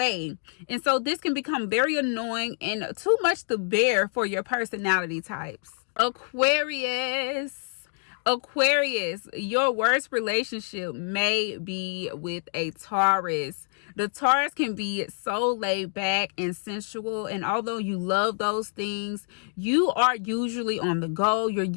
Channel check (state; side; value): silent; right; 60 dB below the other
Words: And so this can become very annoying and too much to bear for your personality types. Aquarius, your worst relationship may be with a Taurus. The Taurus can be so laid back and sensual, and although you love those things, you are usually on the go. You're